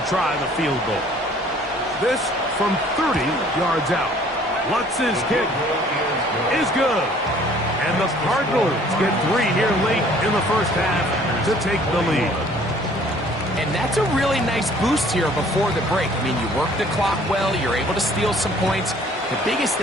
try the field goal. This from 30 yards out. Lutz's kick is good. And the Cardinals get 3 here late in the first half to take the lead. And that's a really nice boost here before the break. I mean, you work the clock well, you're able to steal some points. The biggest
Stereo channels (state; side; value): normal; both; correlation 0.56